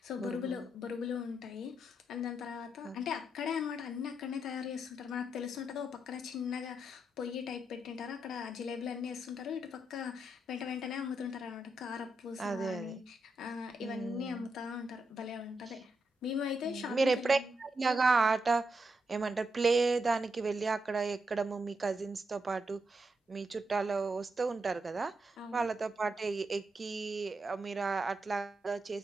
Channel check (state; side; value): normal; both; correlation 0.83